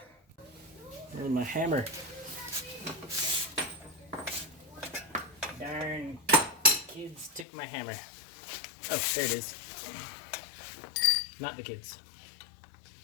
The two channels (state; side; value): drops out; right; at 7.5 s